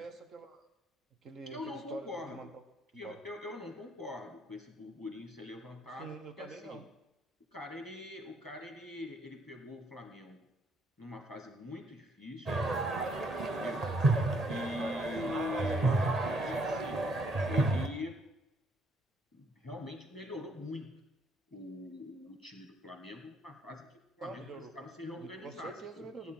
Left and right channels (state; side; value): normal; both; correlation 0.68